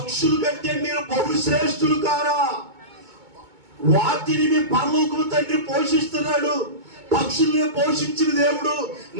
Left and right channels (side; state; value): left; late; 2.2 ms